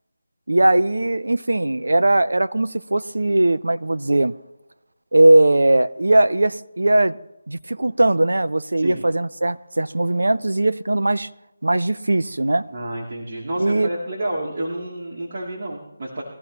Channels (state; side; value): inverted; both; correlation -0.99